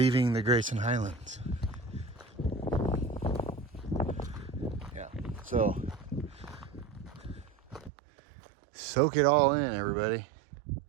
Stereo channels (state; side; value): drops out; left; at 7.9 s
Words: the Grayson Highlands. Yeah, so Soak it all in, everybody.